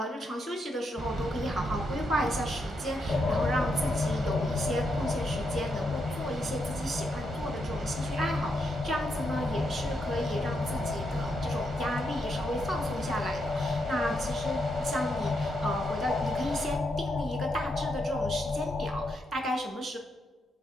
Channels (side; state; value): both; normal; correlation 0.81